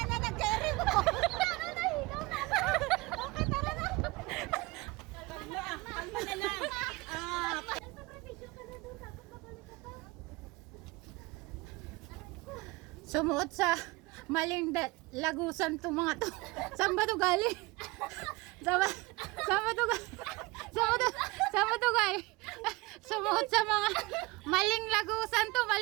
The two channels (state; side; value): quieter; left; 23.0 dB